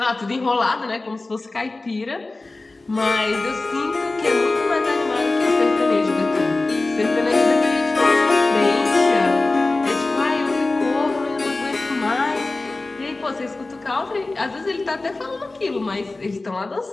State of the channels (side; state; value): right; quieter; 3.2 dB